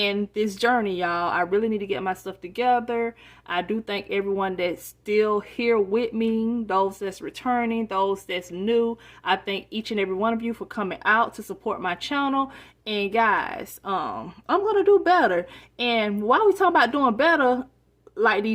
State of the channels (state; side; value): identical; both; correlation 1.00